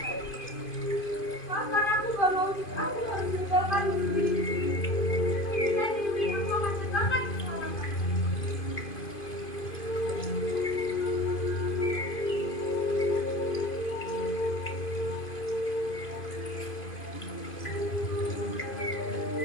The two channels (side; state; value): right; late; 2.5 ms